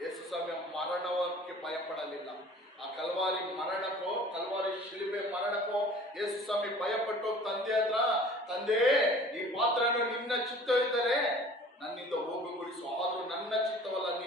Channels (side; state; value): both; normal; correlation 0.47